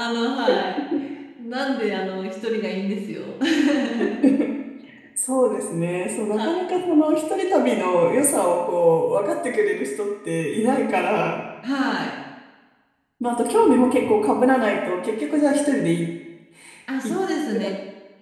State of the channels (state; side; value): identical; both; correlation 1.00